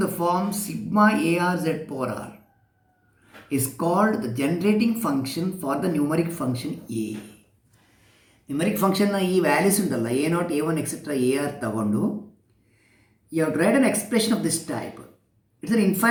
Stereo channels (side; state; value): both; identical; correlation 1.00